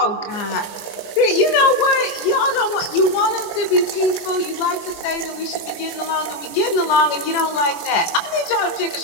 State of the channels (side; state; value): right; late; 24 ms